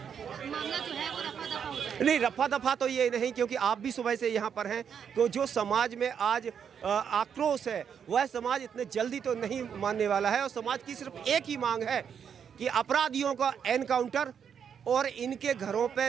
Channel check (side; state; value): left; quieter; 7.6 dB